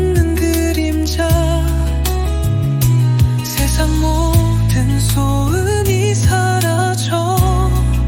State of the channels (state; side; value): identical; both; correlation 1.00